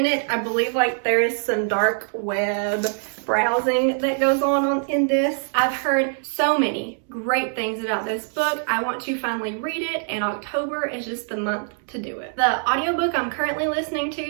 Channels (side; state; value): left; silent; 63 dB below the other